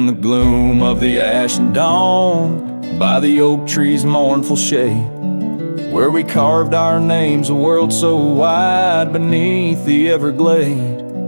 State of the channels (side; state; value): both; inverted; correlation -1.00